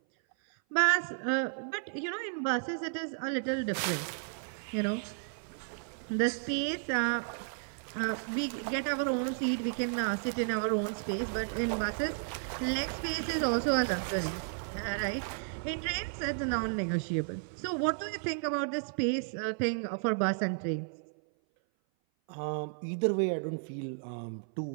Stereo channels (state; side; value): silent; left; 56 dB below the other